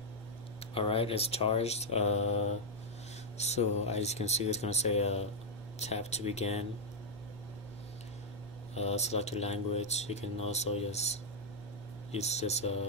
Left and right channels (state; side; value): normal; both; correlation -0.02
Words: Alright, it's charged. So as you can see, it's gonna say tap to begin. Select your language. You can also just use this